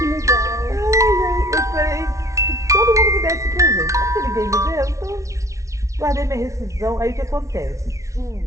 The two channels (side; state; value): left; late; 0.15 ms